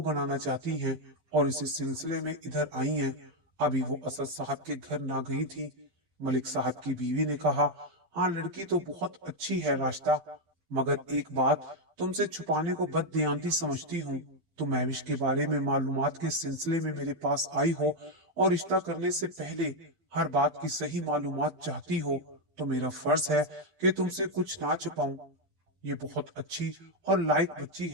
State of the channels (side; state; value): left; late; 12 ms